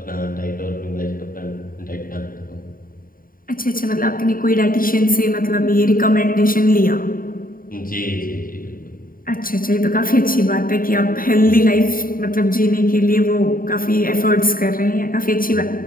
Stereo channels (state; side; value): late; right; 0.41 ms